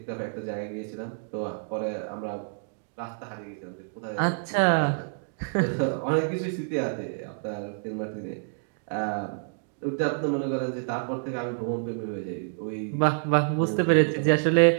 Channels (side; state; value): left; silent; digital silence